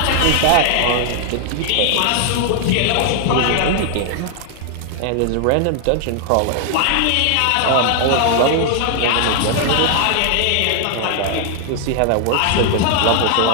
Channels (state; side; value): different; both; correlation 0.00